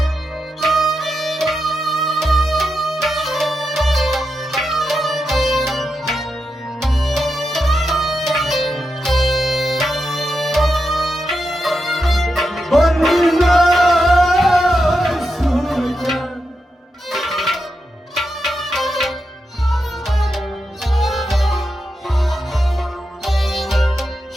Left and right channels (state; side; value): normal; both; correlation 0.87